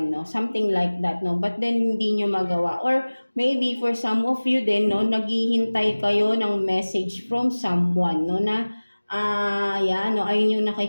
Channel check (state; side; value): inverted; both; correlation -1.00